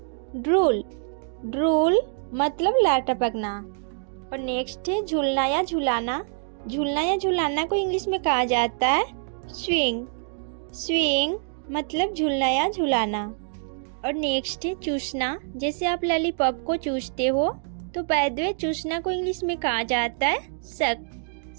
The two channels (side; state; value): left; silent; digital silence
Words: ड्रूल। ड्रूल मतलब लार टपकना। और नेक्स्ट है झूलना या झुलाना। झूलना या झुलाना को इंग्लिश में कहा जाता है स्विंग। स्विंग मतलब झूलना या झुलाना। और नेक्स्ट है चूसना। जैसे आप लॉलीपॉप को चूसते हो तो बाय द वे चूसना को इंग्लिश में कहा जाता है सक।